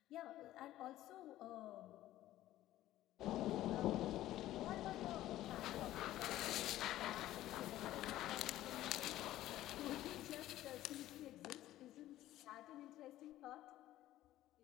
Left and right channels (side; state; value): right; quieter; 14.4 dB